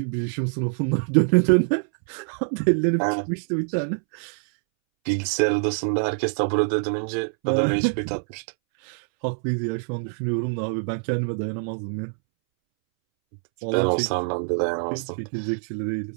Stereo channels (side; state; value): left; silent; 62 dB below the other